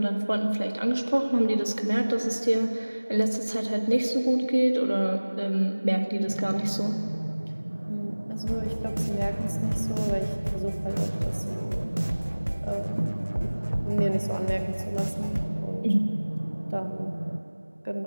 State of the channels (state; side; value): inverted; both; correlation -1.00